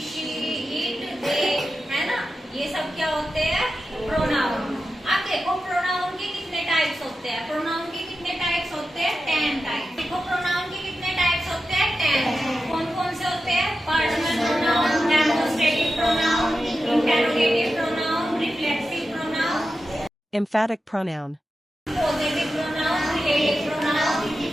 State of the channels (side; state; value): both; normal; correlation 0.91